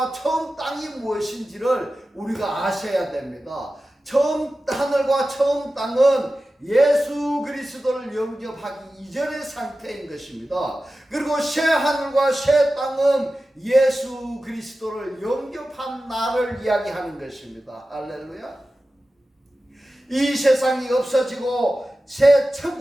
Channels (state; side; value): normal; both; correlation 0.94